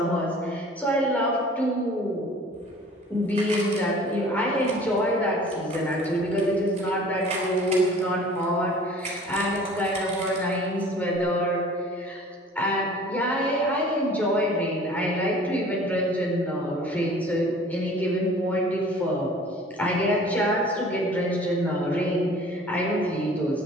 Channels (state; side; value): normal; both; correlation 0.48